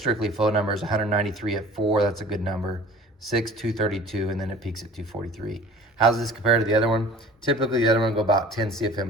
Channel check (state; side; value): normal; both; correlation 0.45